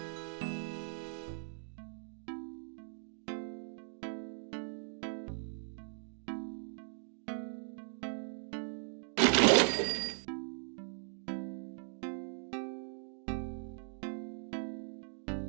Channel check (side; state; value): left; silent; digital silence